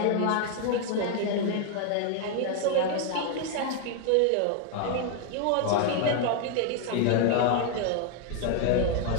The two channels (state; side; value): different; both; correlation 0.00